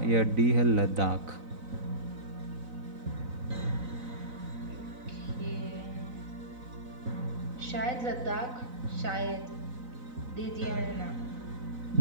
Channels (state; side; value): late; left; 4.0 ms